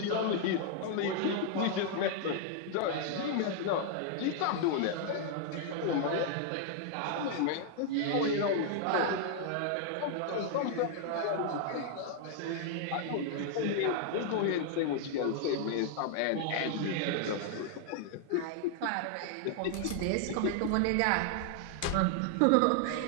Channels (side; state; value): both; different; correlation 0.00